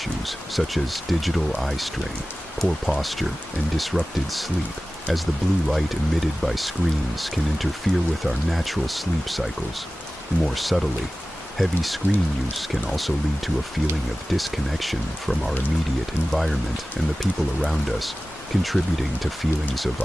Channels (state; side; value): normal; both; correlation 0.96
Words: such as digital eye strain, poor posture, and disrupted sleep, as the blue light emitted by screens can interfere with our natural sleep cycles. More subtly, heavy screen use can also lead to a feeling of disconnection from our immediate environment and the people around us, contributing to feelings of